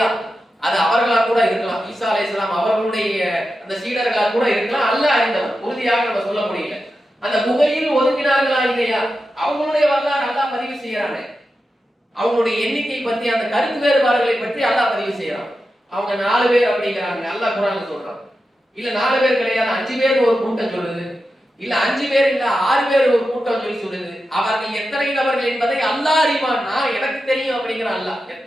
அது அவர்களா கூட இருக்கலாம். ஈசா அலைஹிஸ்ஸலாம் அவர்களுடைய அந்த சீடர்களா கூட இருக்கலாம். அல்லாஹ் அறிந்தவன், உறுதியாக நம்ம சொல்ல முடியல. அந்த புகையில் ஒதுங்கினார்களா இல்லையா, அவங்களுடைய வரலாறு அல்லாஹ் பதிவு செய்யறாங்க. அவங்களுடைய எண்ணிக்கை பற்றி அந்த கருத்து வேறுபாடுகளை பற்றி அல்லாஹ் பதிவு செய்யறான். அவங்க 4 பேர் அப்படிங்கிறாங்க, அல்லாஹ் குர்ஆன்ல சொல்றான். இல்ல 4 பேர் கிடையாது, 5 பேர் ஒரு கூட்டம் சொல்லுது. இல்ல 5 பேர் இல்ல 6 பேர் ஒரு கூட்டம் சொல்லி சொல்லுது. அவர்கள் எத்தனை நபர்கள் என்பதை அல்லாஹ் அறிவான், நான் எனக்கு தெரியும் அப்படிங்கிற அல்லாஹ்.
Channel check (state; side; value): normal; both; correlation 0.90